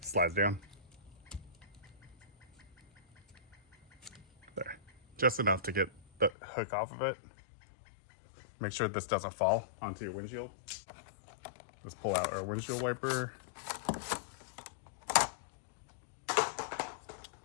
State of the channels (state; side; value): drops out; right; at 6.4 s